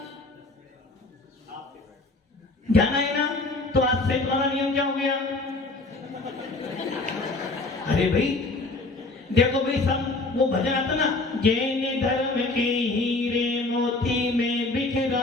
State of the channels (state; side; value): quieter; right; 3.2 dB